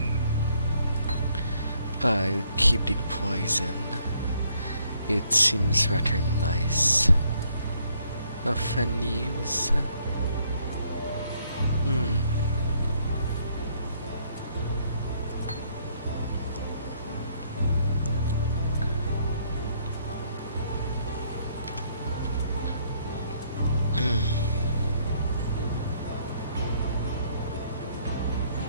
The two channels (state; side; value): inverted; both; correlation -0.68